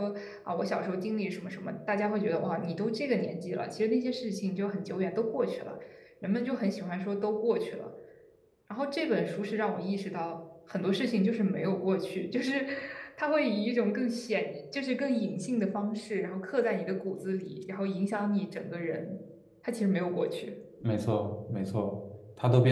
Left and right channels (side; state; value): both; identical; correlation 1.00